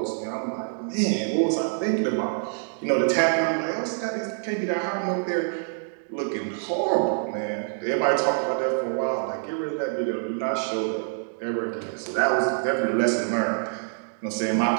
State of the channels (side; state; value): left; silent; digital silence